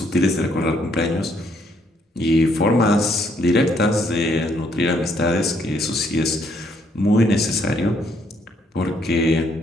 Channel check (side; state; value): both; normal; correlation 0.70